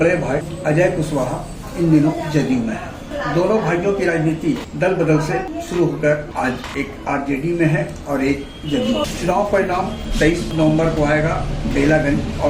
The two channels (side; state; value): both; identical; correlation 1.00